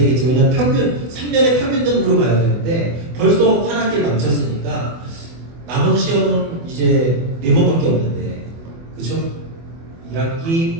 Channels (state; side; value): late; left; 24 ms